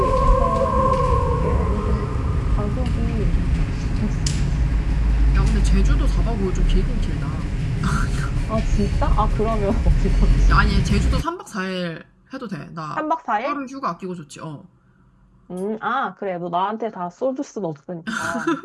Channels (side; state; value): both; identical; correlation 1.00